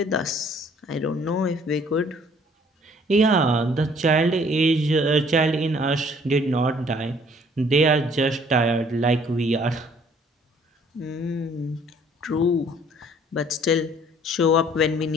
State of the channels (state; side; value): normal; both; correlation 0.59